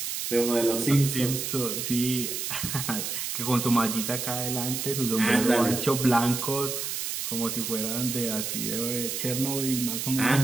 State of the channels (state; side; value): noise; right; hiss, 3 dB below the sound